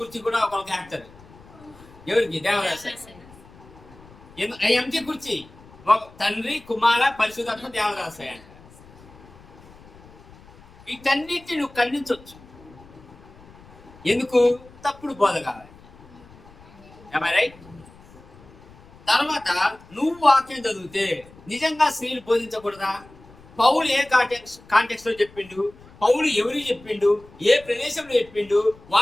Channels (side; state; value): left; noise; rumble, 23 dB below the sound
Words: కూడా ఒకరికి వేస్తారు. ఎవరికి? దేవదాసాయి. ఎంటి కుర్చీ ఒక తండ్రి, కుమార, పరిశుధాత్మ, దేవదాసాయి అంట. వీటన్నిటిని నువ్వు ఖండించవచ్చు. ఎందుకు? తప్పుడు బోధ కావాలి. రైట్? తర్వాత నువ్వు వాక్యం చదివితే నిజంగా స్త్రీలు బోధించకూడదా? పౌలు ఏ కాంటెక్స్ట్ లో చెప్పిండు, పౌలు ఎవరికి చెప్పిండు, ఏ ప్రదేశంలో చెప్పిండు,